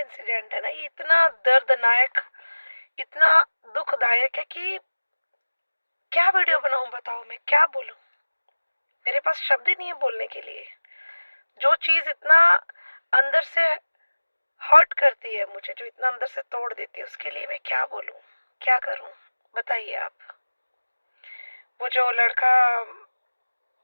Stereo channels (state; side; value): inverted; both; correlation -1.00